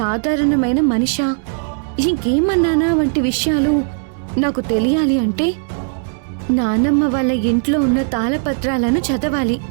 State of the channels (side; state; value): left; silent; digital silence